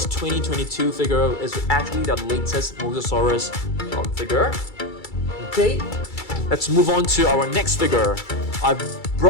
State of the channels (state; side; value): late; right; 2.3 ms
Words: 2022 figure is actually the latest Mosasaurus figure. Okay, let's move on to our next figure. I've